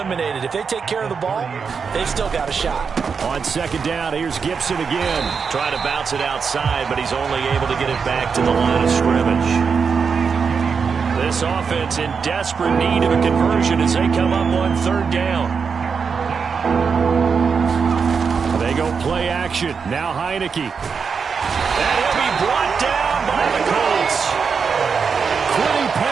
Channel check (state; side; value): quieter; left; 5.8 dB